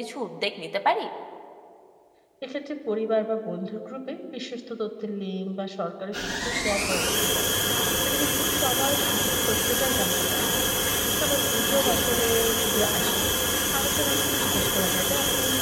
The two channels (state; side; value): identical; both; correlation 1.00